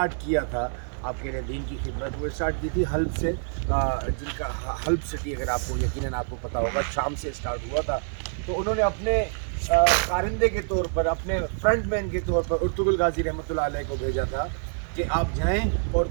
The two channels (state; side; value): silent; left; 61 dB below the other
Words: किया था आपके लिए दीन की खिदमत, वो स्टार्ट की थी हल्ब से, जिनका हल्ब सिटी अगर आपको यकीनन आपको पता होगा, शाम से स्टार्ट हुआ था। तो उन्होंने अपने कारिंदे के तौर पर, अपने फ्रंट मैन के तौर पर कुर्तुबुल गाजी रहमतुल्लाह अलैह को भेजा था कि आप जाएं और